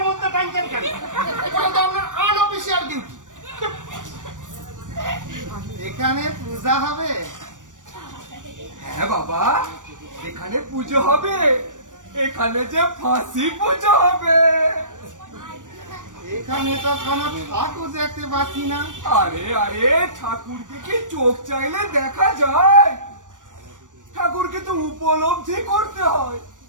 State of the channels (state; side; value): late; left; 0.87 ms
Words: মধ্যে টানছেন কেন? ওটা তো আপনার আনঅফিসিয়াল ডিউটি। এখানে পূজা হবে? হ্যাঁ বাবা, এখানে পুজো হবে, এখানে যে ফাঁসি পুজো হবে। এখানে তো কোনো ঠাকুর দেখতে পাচ্ছি না। আরে ঠাকুরকে কি চোখ চাইলে দেখা যায়? ঠাকুরকে তো উপলব্ধি করতে হয়।